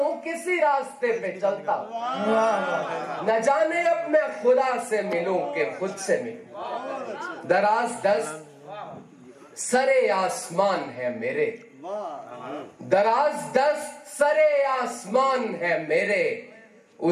किसी रास्ते पे चलता, न जाने अब मैं खुदा से मिलूं कि खुद से मिलूं। दराज दस्त सरे आसमान है मेरे, दराज दस्त सरे आसमान है मेरे,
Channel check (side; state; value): both; identical; correlation 1.00